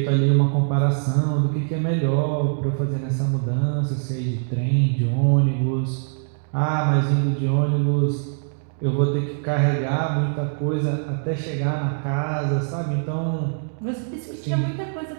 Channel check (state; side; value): silent; left; digital silence